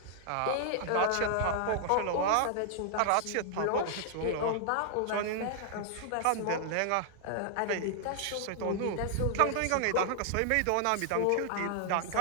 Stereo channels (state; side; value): different; both; correlation -0.01